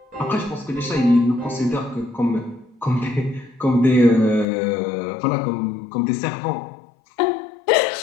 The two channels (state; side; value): drops out; right; at 4.5 s